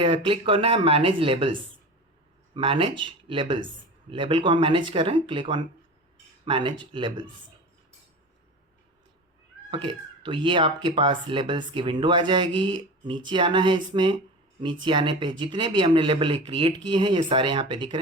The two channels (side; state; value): both; normal; correlation 0.31